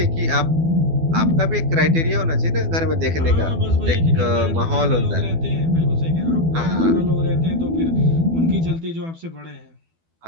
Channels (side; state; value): left; late; 12 ms